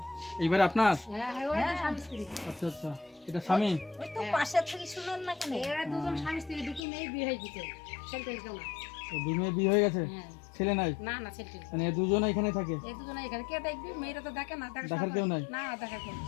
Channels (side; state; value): right; drops out; at 6.8 s